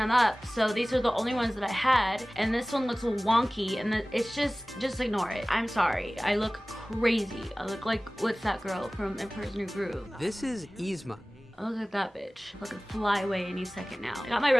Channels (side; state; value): both; normal; correlation 0.98